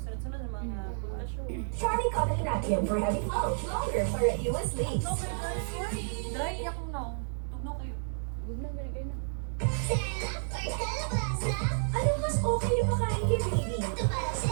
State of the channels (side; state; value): left; silent; 57 dB below the other